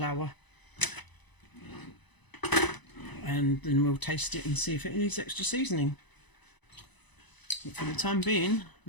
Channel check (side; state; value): right; late; 1.0 ms